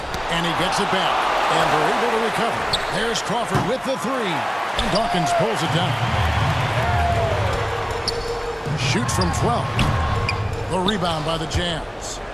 And he gets it back. And they're able to recover. There's Crawford with the 3. And Dawkins pulls it down. Shoots from 12. The rebound by the Jazz.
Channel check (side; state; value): both; identical; correlation 1.00